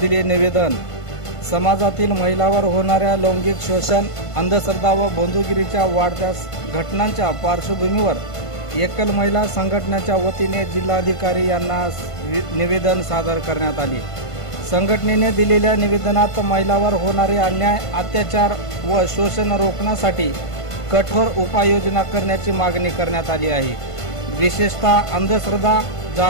निवेदन। समाजातील महिलांवर होणाऱ्या लैंगिक शोषण, अंधश्रद्धा व बंधुगिरीच्या वाढत्या घटनांच्या पार्श्वभूमीवर एकल महिला संघटनेच्या वतीने जिल्हाधिकारी यांना निवेदन सादर करण्यात आले। संघटनेने दिलेल्या निवेदनात महिलांवर होणारे अन्याय, अत्याचार व शोषण रोखण्यासाठी कठोर उपाययोजना करण्याची मागणी करण्यात आली आहे। विशेषतः अंधश्रद्धा,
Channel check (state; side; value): late; right; 1.5 ms